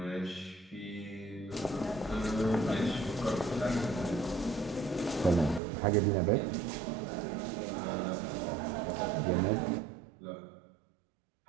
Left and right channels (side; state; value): left; drops out; at 5.6 s